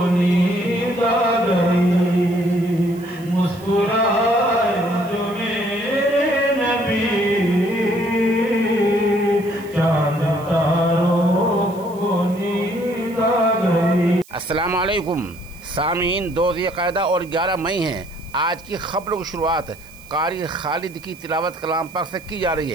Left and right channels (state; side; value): noise; right; hiss, 24 dB below the sound